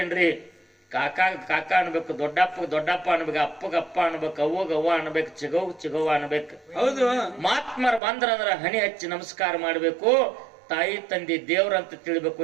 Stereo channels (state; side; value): drops out; left; at 8.0 s